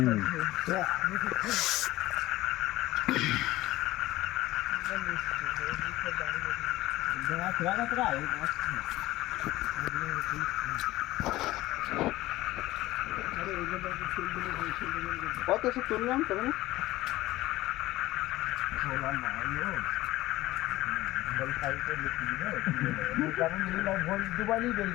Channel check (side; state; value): right; quieter; 17.3 dB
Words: কত এসে তুললাম তখন দুবাই বেরিয়ে